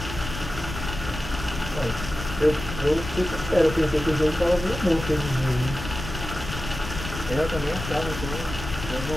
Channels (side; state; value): left; noise; rumble, 8 dB below the sound